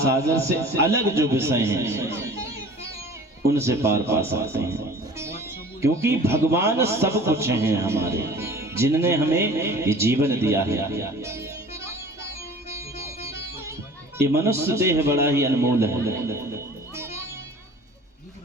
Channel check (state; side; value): normal; both; correlation 0.45